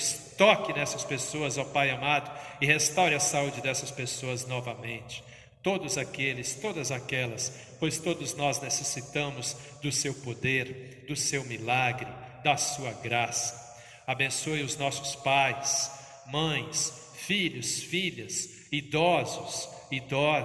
toque nessas pessoas, ó Pai amado, e restaure a saúde dessas pessoas novamente. Todos aqueles, todas aquelas, pois todos nós necessitamos do Seu poder, do Seu milagre, da Sua graça. Abençoe os nossos pais, mães, filhos, filhas, idosos,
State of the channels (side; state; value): both; identical; correlation 1.00